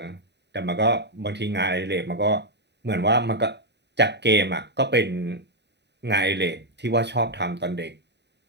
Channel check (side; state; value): left; late; 0.50 ms